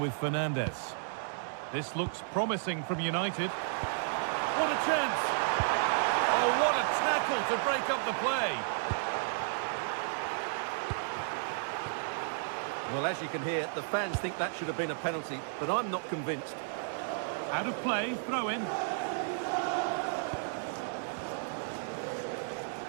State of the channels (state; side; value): silent; left; 56 dB below the other